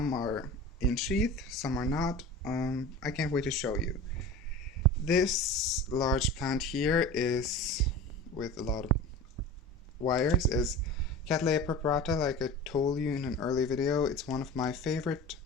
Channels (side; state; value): both; normal; correlation 0.34